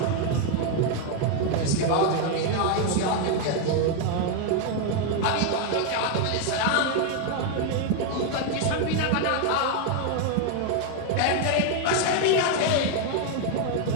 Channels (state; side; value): different; both; correlation 0.01